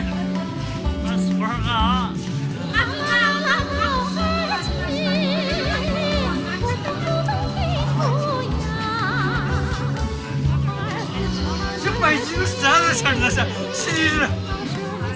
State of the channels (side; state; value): both; identical; correlation 1.00